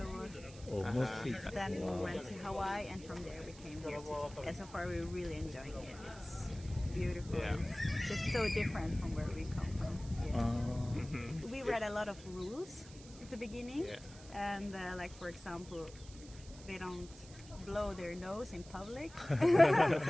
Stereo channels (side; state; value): right; noise; hiss, 19 dB below the sound